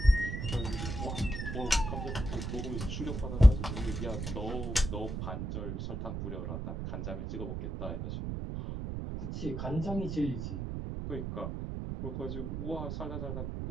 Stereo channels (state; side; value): noise; right; rumble, 4 dB below the sound